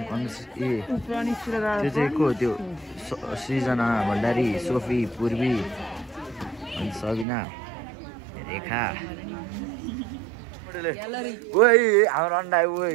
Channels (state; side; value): drops out; left; at 7.2 s